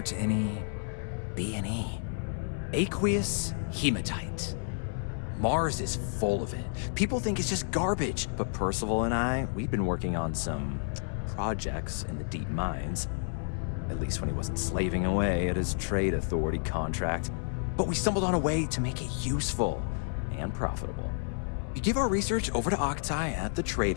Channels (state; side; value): silent; right; 57 dB below the other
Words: to any B&E. Aqueous hematite. Mars is full of it. People think it's just garbage, but Percival and I, we've been working on some projects in the deep mines. At least when he wasn't slaving away at his Trade Authority contract. But we stumbled on a way to make it useful and profitable. You give our research over to Octai at the Trade